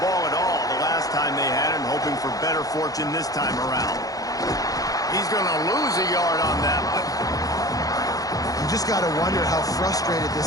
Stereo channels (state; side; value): late; right; 0.17 ms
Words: at all the last time they had it, hoping for better fortune this time around. He's going to lose a yard on that one. You just got to wonder how frustrated